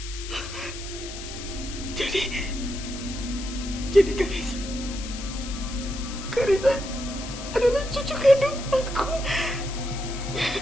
Jadi Karissa adalah cucu kandung aku.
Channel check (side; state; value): left; noise; hiss, 11 dB below the sound